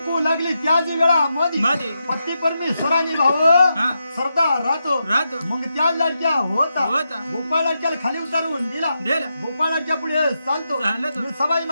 लागली त्याच वेळा मध्ये पती परमेश्वराने भाऊ सरदार राहतो मग त्या लाडक्या होता गोपाळ लाडक्याला खाली उतारून दिला गोपाळ लाडक्या पुढे चालतो सबाई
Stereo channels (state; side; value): inverted; both; correlation -0.86